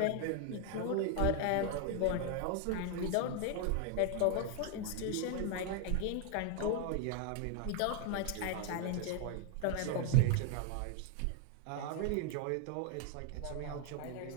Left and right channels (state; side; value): different; both; correlation 0.00